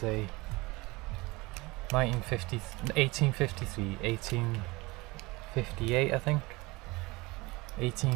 1853, 1858 I think,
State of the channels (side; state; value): left; quieter; 23.1 dB